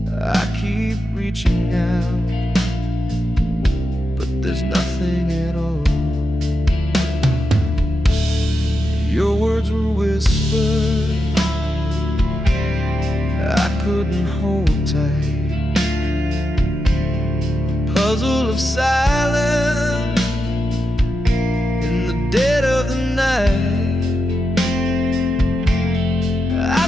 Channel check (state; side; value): normal; both; correlation 0.86